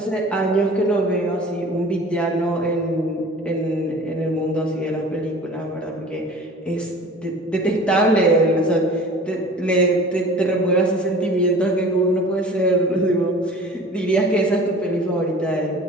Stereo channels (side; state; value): both; normal; correlation 0.43